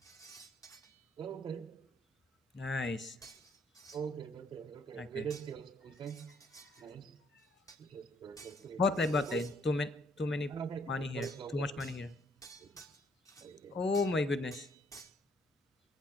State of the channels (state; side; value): normal; both; correlation 0.67